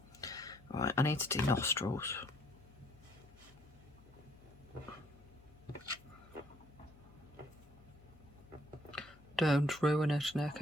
Right, I need to do nostrils. Don't ruin it,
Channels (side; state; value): left; noise; hum, 24 dB below the sound